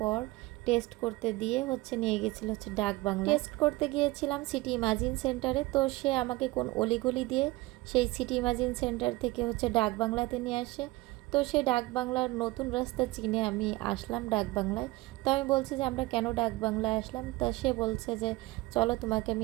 টেস্ট করতে দিয়ে হচ্ছে নিয়ে গেছিল হচ্ছে ডাক বাংলা। টেস্ট করতে গিয়েছিলাম সিটি ইমাজিন সেন্টারে, তো সে আমাকে কোন অলিগলি দিয়ে সেই সিটি ইমাজিন সেন্টার থেকে হচ্ছে ডাক বাংলাতে নিয়ে আসে। তো সেই ডাক বাংলার নতুন রাস্তা চিনে আমি আসলাম ডাক বাংলায়। তো আমি বলছি যে আমরা কেন ডাক বাংলায় আসলাম, তা সে বলছে যে চলো তোমাকে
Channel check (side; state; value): left; quieter; 20.6 dB